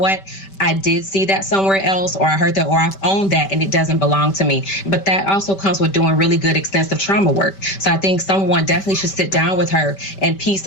I did see that somewhere else, or I heard that, or I've owned that and it doesn't belong to me. But that also comes with doing really good extensive trauma work. So I think someone definitely should sit down with her and piece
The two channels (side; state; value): right; late; 5.1 ms